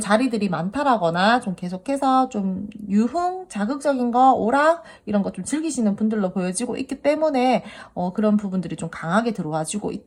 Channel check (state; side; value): identical; both; correlation 1.00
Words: 자리들이 많다라거나 좀 계속해서 좀 유흥, 자극적인 거, 오락 이런 거 좀 즐기시는 분들로 보여지고 있기 때문에 그런 부분들이 좀 강하게 들어와지고